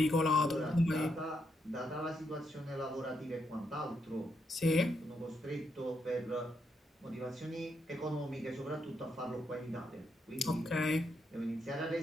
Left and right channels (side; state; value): both; normal; correlation 0.79